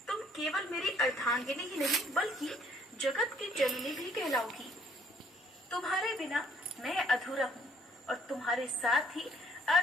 तुम केवल मेरी अर्धांगिनी ही नहीं बल्कि जगत की जननी भी कहलाओगी। तुम्हारे बिना मैं अधूरा हूँ और तुम्हारे साथ ही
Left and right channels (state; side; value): normal; both; correlation 0.63